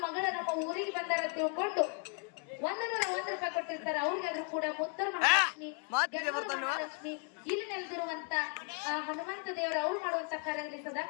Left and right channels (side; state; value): right; quieter; 38.9 dB